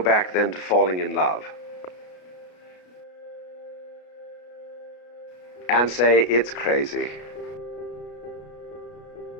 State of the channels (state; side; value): late; right; 33 ms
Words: then to falling in love and say it's crazy.